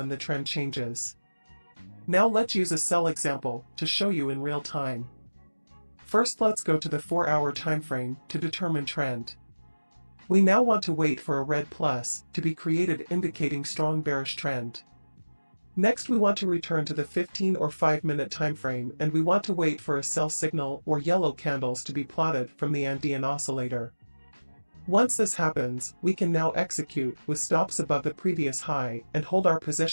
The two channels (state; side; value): inverted; both; correlation -1.00